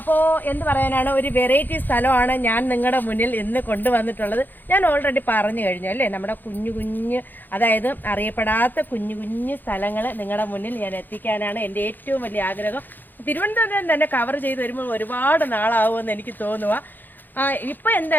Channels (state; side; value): late; right; 0.088 ms